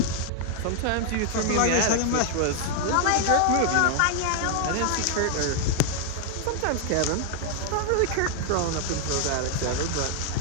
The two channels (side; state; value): both; different; correlation 0.00